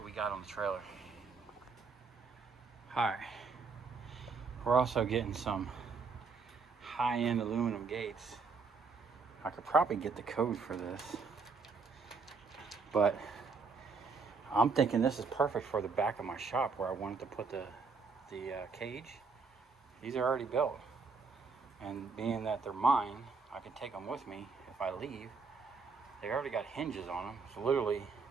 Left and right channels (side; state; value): left; quieter; 4.7 dB